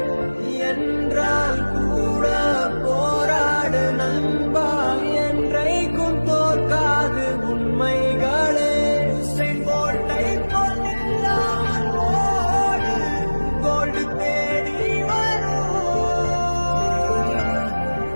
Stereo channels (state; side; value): inverted; both; correlation -1.00